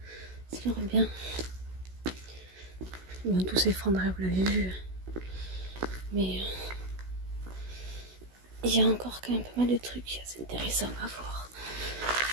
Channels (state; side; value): late; left; 16 ms